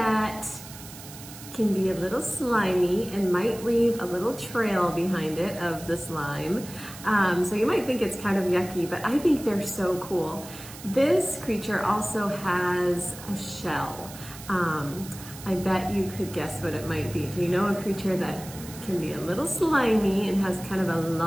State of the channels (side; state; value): right; noise; hiss, 15 dB below the sound